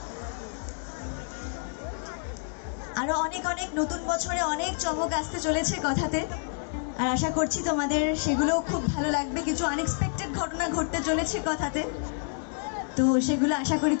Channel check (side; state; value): right; silent; digital silence